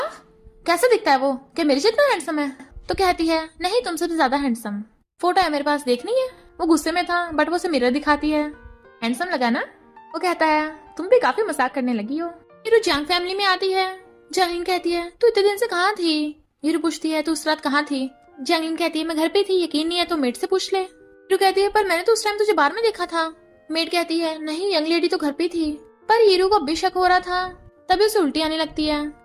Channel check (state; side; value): identical; both; correlation 1.00